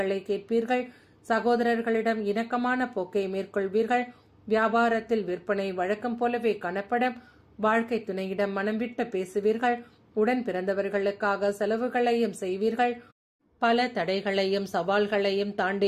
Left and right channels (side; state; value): both; identical; correlation 1.00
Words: கேட்பீர்கள். சகோதரர்களிடம் இணக்கமான போக்கை மேற்கொள்வீர்கள். வியாபாரத்தில் விற்பனை வழக்கம் போலவே காணப்படும். வாழ்க்கை துணையிடம் மனம் விட்டு பேசுவீர்கள். உடன் பிறந்தவர்களுக்காக செலவுகளையும் செய்வீர்கள். பல தடைகளையும் சவால்களையும்